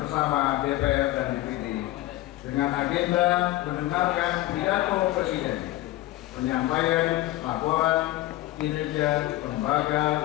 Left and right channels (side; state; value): right; quieter; 16.4 dB